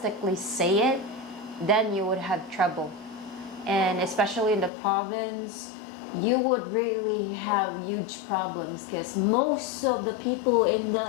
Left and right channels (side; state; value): right; drops out; at 4.7 s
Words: say it, then you would have trouble. And especially in the province, you would really have huge problems because most of the people in